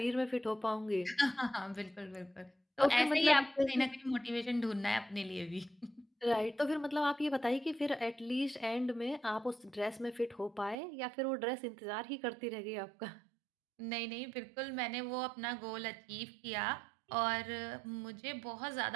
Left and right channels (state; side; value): drops out; left; at 10.8 s